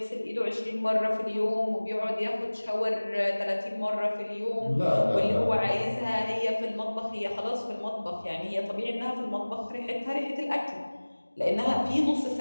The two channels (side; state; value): both; inverted; correlation -1.00